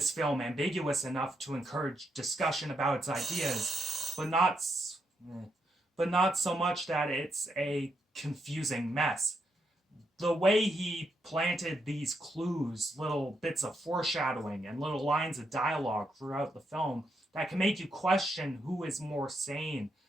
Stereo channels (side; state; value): both; normal; correlation 0.79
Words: film ambiguous enough to encourage discussion about its ideas, but not so much that it's a confusing mess. The way he planted these clues, little bits of foreshadowing, and little lines of dialogue throughout the film that can make you question who is more sane